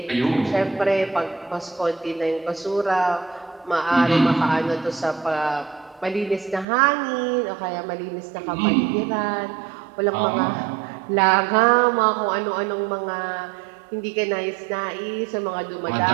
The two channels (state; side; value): drops out; left; at 6.7 s